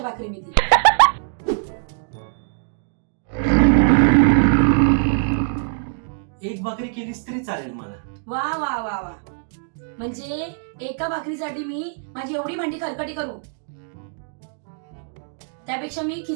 भाकरी मी ती. एक भाकरी केलीस तरी चालेल मला. वा वा वा वा, म्हणजे एका भाकरीसाठी मी माझी एवढी भांडी खरकटी करू? त्यापेक्षा मी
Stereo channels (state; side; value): silent; left; digital silence